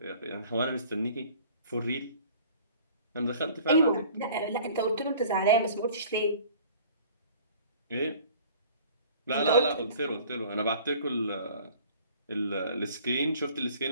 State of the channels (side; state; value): both; inverted; correlation -0.49